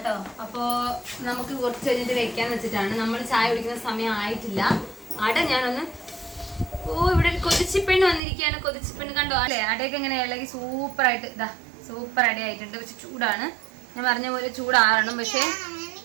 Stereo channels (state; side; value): drops out; left; at 8.2 s